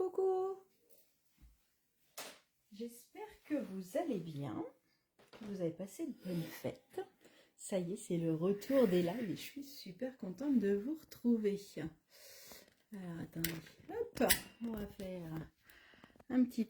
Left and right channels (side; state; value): both; identical; correlation 1.00